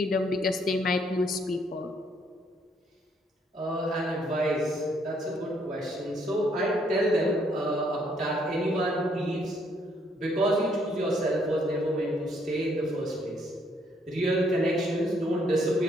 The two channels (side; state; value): both; normal; correlation 0.69